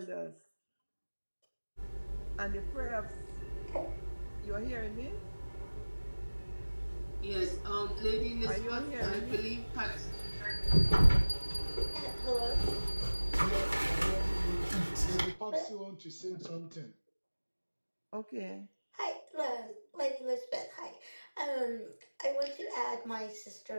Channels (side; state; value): both; inverted; correlation -1.00